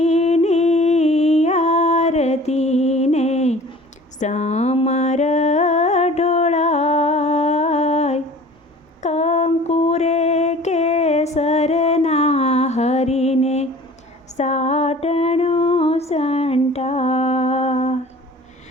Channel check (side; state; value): both; normal; correlation 0.45